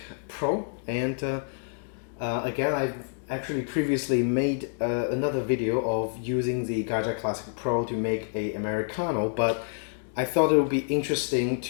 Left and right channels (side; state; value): right; silent; digital silence